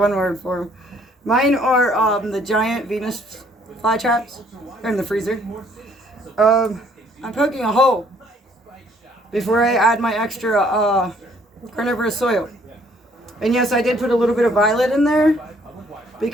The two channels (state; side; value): normal; both; correlation 0.63